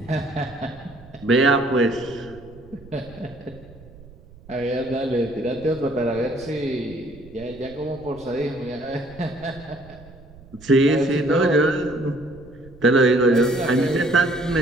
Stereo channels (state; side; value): noise; right; rumble, 21 dB below the sound